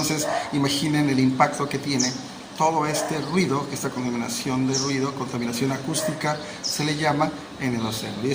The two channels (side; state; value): both; identical; correlation 1.00